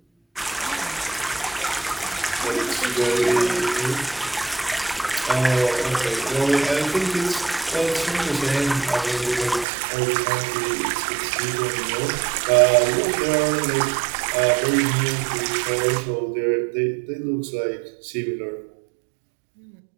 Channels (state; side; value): drops out; left; at 9.7 s